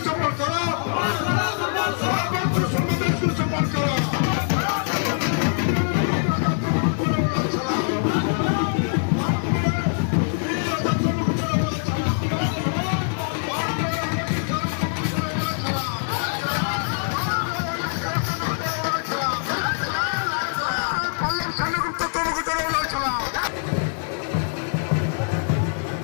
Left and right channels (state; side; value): silent; right; 63 dB below the other